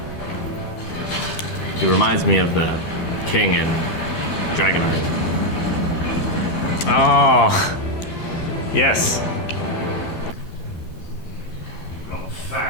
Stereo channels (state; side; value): late; right; 12 ms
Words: He reminds me of the king in Dragonheart. Oh. Yes. Got